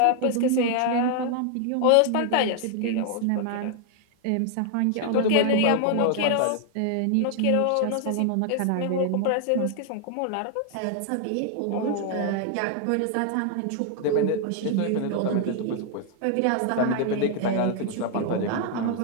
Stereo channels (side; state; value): both; different; correlation 0.00